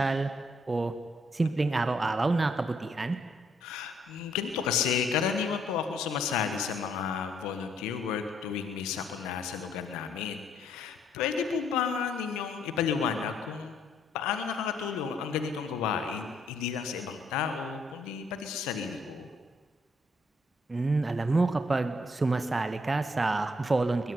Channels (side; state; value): both; normal; correlation 0.70